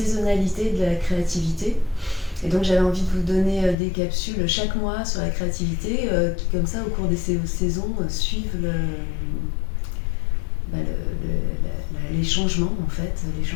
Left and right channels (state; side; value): drops out; right; at 3.8 s